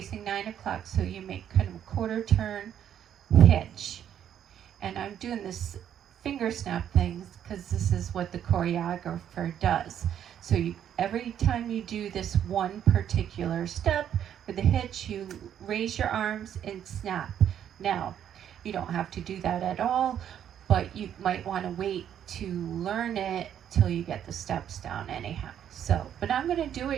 9 o'clock, so you make kind of a quarter turn hitch. And I'm doing this finger snap things because this is what the choreographer does. So every time you do this one particular step with the hitch, you raise your arms and snap. Now, you don't have to do that at all, but you might want to wait to learn it till you get the steps down anyhow. So, but I'm going to do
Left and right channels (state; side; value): quieter; left; 9.7 dB